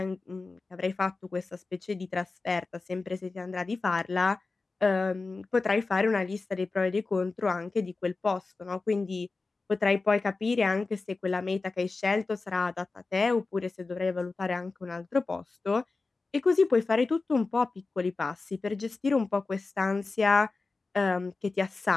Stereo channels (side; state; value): right; quieter; 3.8 dB